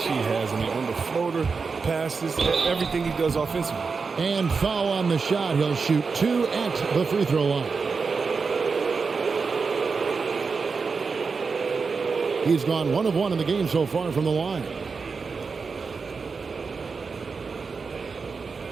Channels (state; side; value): quieter; left; 4.9 dB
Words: he has. I mean, on the floater, passes, everything he does offensively. And foul on the shot. He'll shoot 2 at the free throw line. He's gone 1 of 1 in the game so far from the line.